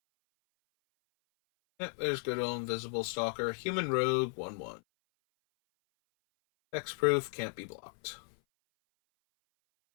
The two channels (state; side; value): silent; right; 55 dB below the other